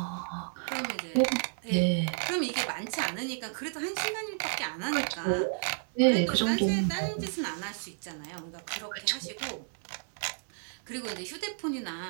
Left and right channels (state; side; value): silent; left; 57 dB below the other